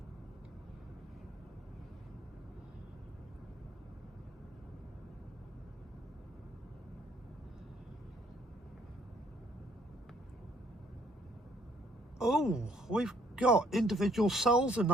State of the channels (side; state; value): both; normal; correlation 0.65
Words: Oh, we've got individual cells in the